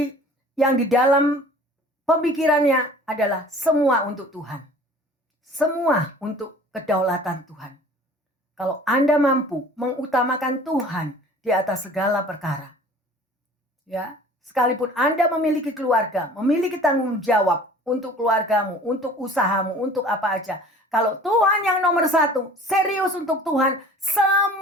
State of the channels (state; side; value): normal; both; correlation 0.47